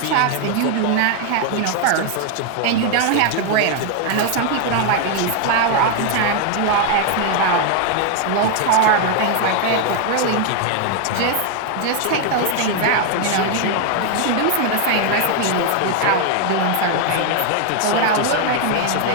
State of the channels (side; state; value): both; different; correlation 0.00